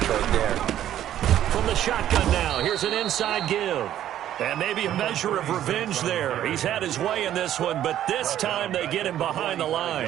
right there. From the shotgun now, here's an inside give. And maybe a measure of revenge there. He's had his way in this one, but this time they get him behind the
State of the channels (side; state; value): left; quieter; 11.7 dB